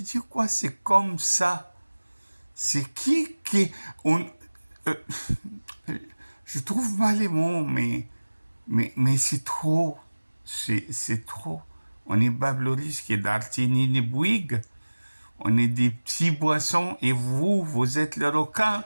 quoi? C'est comme ça. C'est qui euh, je trouve pas les mots, mais c'est trop. C'est trop. On est Babloris qui est d'Artini ni Bouygues. On est des petits boissons et vous êtes le requin.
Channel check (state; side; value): inverted; both; correlation -1.00